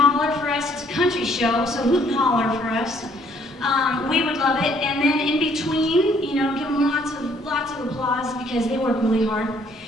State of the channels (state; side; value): normal; both; correlation 0.64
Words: for us, it's a country show, so hoot and holler for us. We would love it. And then in between, you know, give them lots of applause because they work really hard.